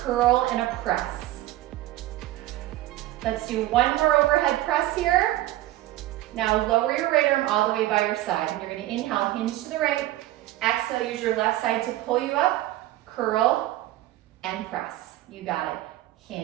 and a press. Let's do one more overhead press here. Now lower your right arm all the way by your side. And you're gonna inhale, hinge to the right. Exhale, use your left side to pull you up. Curl and press. You got it.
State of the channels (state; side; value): quieter; left; 15.6 dB